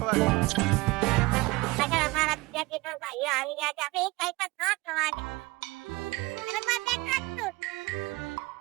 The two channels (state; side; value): quieter; left; 22.2 dB